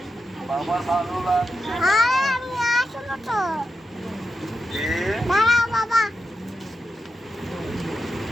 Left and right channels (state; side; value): normal; both; correlation 0.89